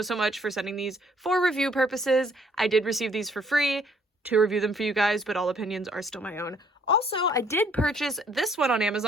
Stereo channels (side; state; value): both; normal; correlation 0.63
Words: much for sending these for review purposes. I did receive these for free to review them for you guys, but all opinions are still my own. Also, I did purchase this one on